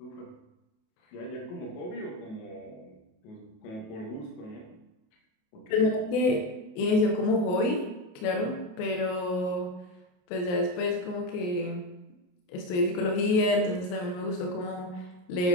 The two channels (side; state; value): right; late; 28 ms